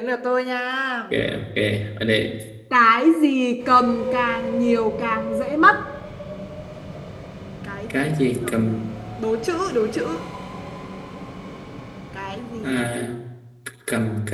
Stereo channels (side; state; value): both; identical; correlation 1.00